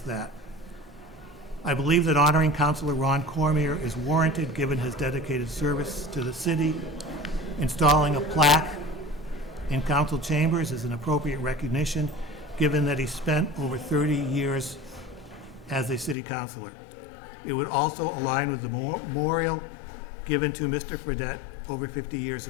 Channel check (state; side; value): drops out; right; at 16.2 s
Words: that. I believe that honoring Councilor Ron Cormier is warranted given his dedicated service to the city. Installing a plaque in council chambers is an appropriate recognition given that he spent over 30 years as a city councilor. It would also align with the memorial given to Mr. Fredette over 50 years